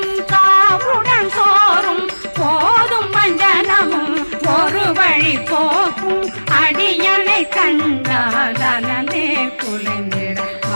காவுடன் சோறும் போதும் வஞ்சனமும் ஒரு வழி போக்கும் அடியனை கண்டால் அலமே குலைந்திட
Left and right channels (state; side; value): inverted; both; correlation -1.00